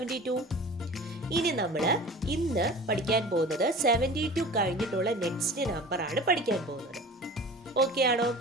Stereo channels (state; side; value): normal; both; correlation 0.39